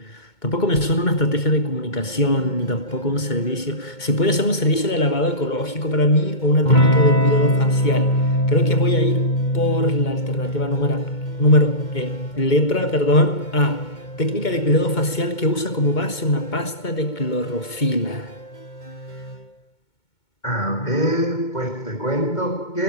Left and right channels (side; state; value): right; late; 2.2 ms